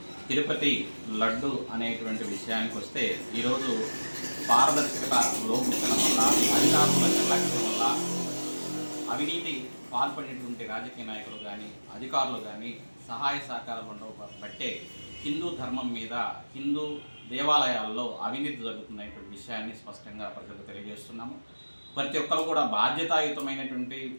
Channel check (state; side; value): inverted; both; correlation -1.00